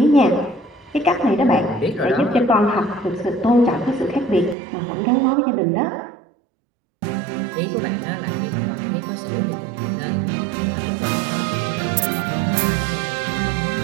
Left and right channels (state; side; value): drops out; left; at 4.5 s